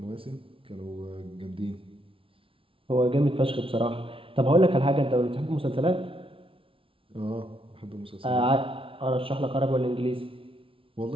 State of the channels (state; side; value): late; left; 0.26 ms